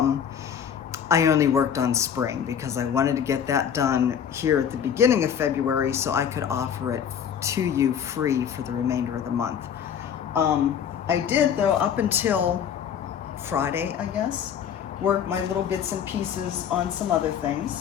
only worked on spring because I wanted to get that done here at the beginning of February so I could offer it to you free for the remainder of the month. I did, though, up until Friday, I guess, work my little bits and pieces on some other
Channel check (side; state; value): right; quieter; 8.3 dB